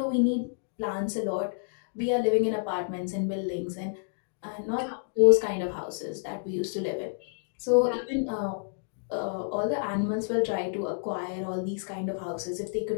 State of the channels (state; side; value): silent; right; digital silence